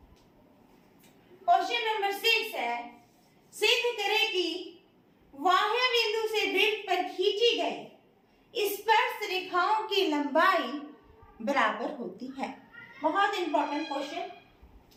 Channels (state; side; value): identical; both; correlation 1.00